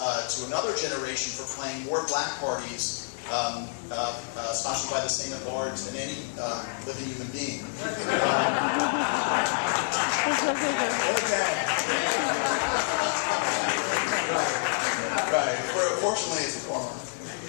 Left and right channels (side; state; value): right; silent; digital silence